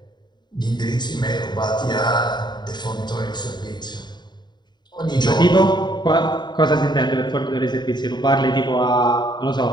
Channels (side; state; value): right; late; 0.21 ms